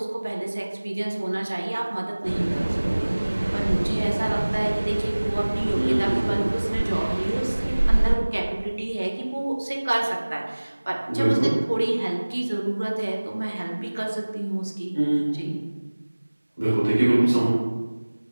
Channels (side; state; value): both; inverted; correlation -1.00